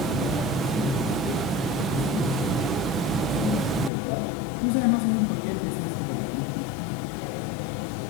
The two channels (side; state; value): right; drops out; at 3.9 s